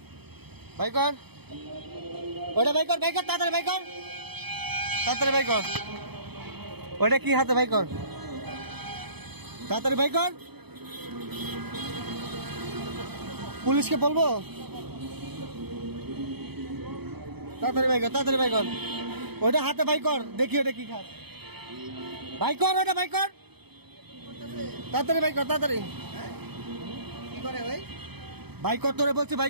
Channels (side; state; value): left; late; 0.98 ms